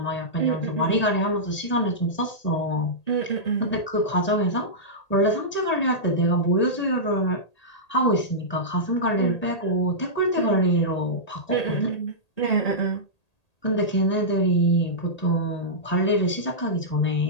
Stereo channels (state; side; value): late; right; 1.8 ms